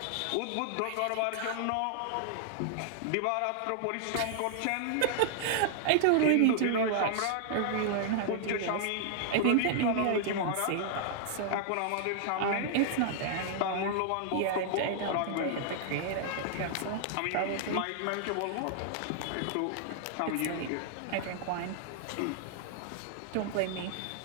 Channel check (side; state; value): both; different; correlation -0.01